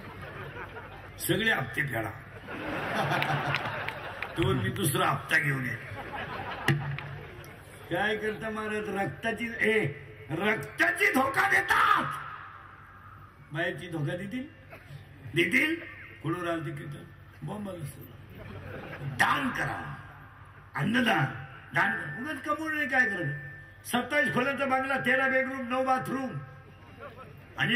सगळे हप्ते फेडा, तो मी दुसरा हप्ता घेऊन ये. काय करता महाराज? रक्ताची धोका देतात. बायाची धोका देतील कुठून राहते कीर्तन बॉम्बाला. दान करा, अन्नदान, दान उगाच कमवून नाही. काय करत? 27 खोल्याचा बांगला, 13 बेडरूम, 9 बाथरूम, आणि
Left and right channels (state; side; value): identical; both; correlation 1.00